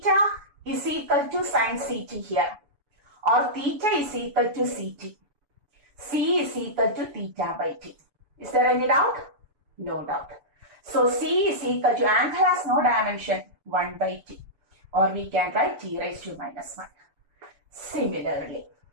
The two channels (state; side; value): late; left; 7.0 ms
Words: is equal to sin CT here, or theta is equal to CT. C is equal to theta by T. Is there any doubt? No doubt. So, C is equal to, angle has no dimension, 1 by T. Or we can write T raised to minus 1. Similarly,